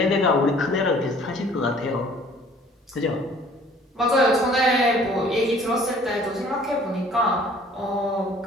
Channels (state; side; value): normal; both; correlation 0.54